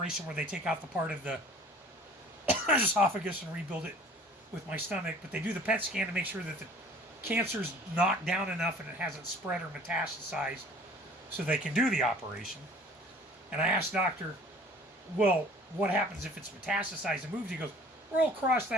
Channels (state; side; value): normal; both; correlation 0.50